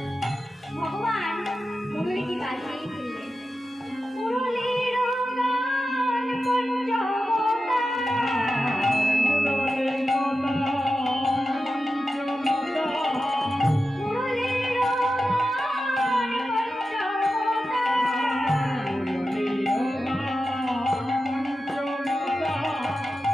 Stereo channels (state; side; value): normal; both; correlation 0.92